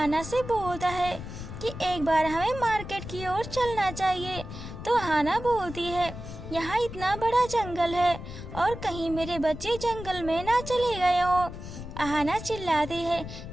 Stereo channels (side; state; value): left; noise; rumble, 10 dB below the sound